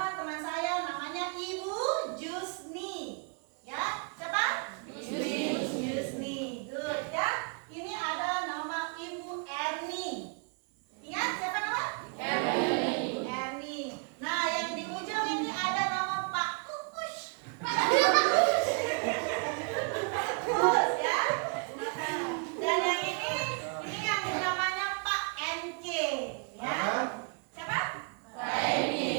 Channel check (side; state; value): left; quieter; 35.8 dB